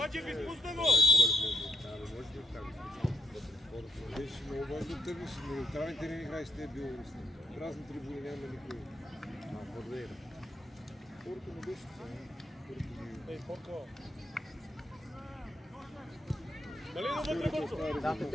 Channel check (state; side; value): normal; both; correlation 0.80